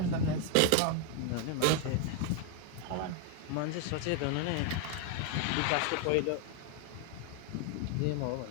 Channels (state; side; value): different; both; correlation 0.00